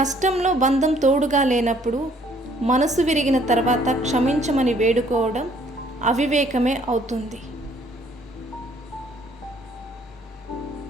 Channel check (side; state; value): both; normal; correlation 0.62